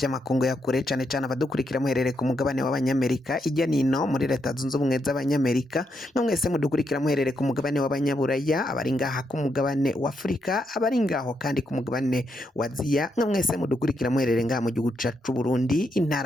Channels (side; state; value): both; normal; correlation 0.80